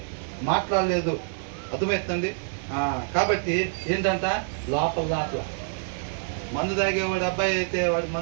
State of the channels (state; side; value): silent; left; digital silence